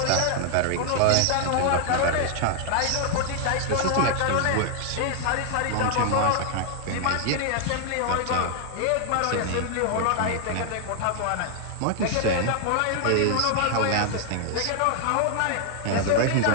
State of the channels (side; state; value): both; different; correlation 0.00